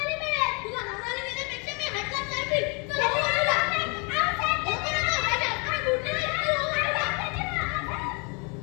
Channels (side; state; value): right; quieter; 33.5 dB